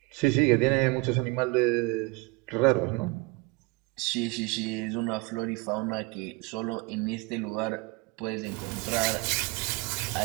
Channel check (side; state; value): left; quieter; 25.4 dB